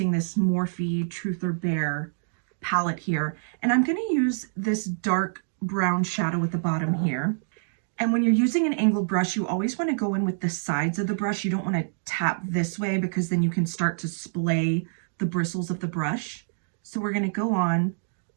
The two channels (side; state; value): left; silent; digital silence